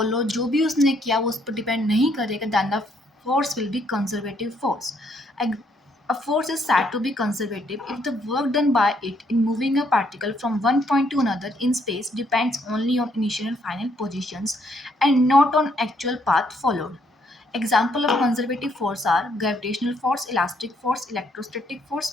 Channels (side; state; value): both; normal; correlation 0.70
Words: जो भी उसने किया वो उस पर डिपेंड नहीं करेगा, then the force will be conservative force. A force is said to be conservative if the work done by it in moving a particle from one point to another in space depends only on initial and final positions and not on actual path followed. Example of conservative force are gravitational force, elastic force, electrostatic